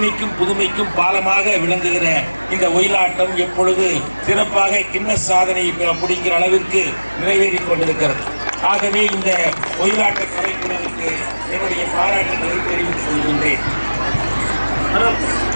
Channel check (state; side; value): inverted; both; correlation -1.00